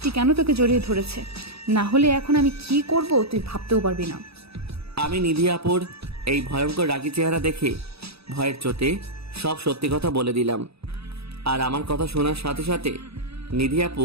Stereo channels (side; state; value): left; late; 0.78 ms